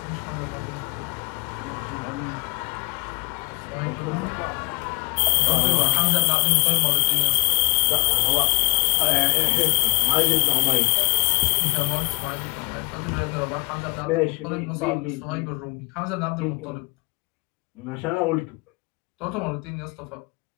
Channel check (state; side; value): quieter; right; 29.5 dB